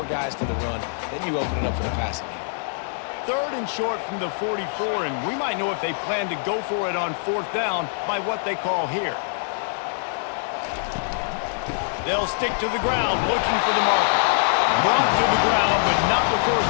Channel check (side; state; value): right; silent; digital silence